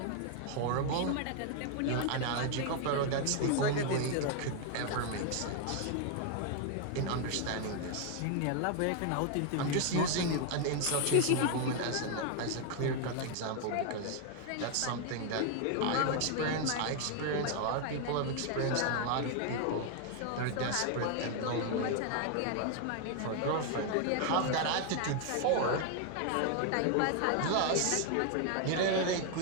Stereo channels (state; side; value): different; both; correlation 0.00